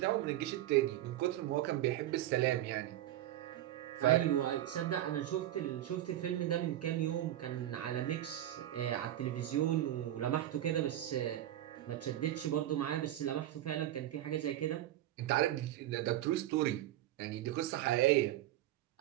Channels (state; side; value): quieter; left; 13.4 dB